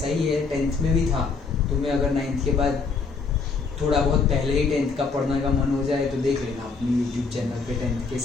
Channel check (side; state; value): right; quieter; 4.6 dB